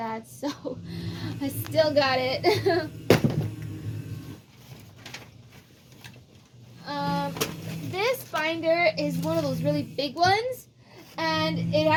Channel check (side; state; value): both; identical; correlation 1.00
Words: So I still got it. This binder is one of those really big ones, and it